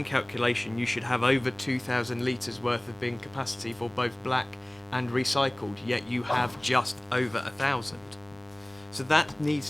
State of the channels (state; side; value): noise; right; rumble, 29 dB below the sound